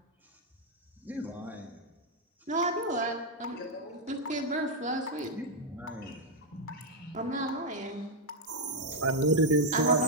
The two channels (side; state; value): both; normal; correlation 0.00